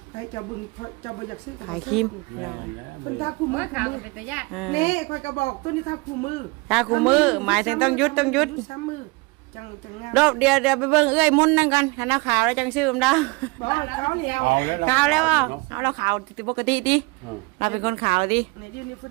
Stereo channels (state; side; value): quieter; left; 26.9 dB